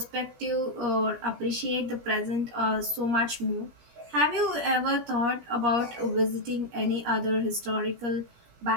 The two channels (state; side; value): late; left; 17 ms